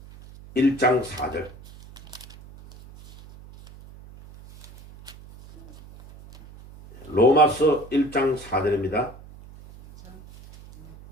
1장 4절. 로마서 1장 4절입니다.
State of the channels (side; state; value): right; noise; hum, 20 dB below the sound